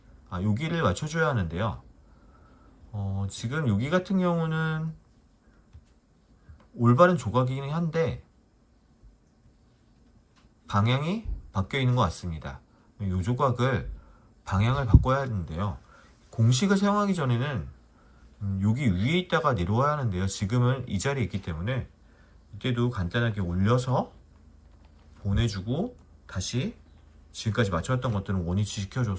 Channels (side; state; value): both; identical; correlation 1.00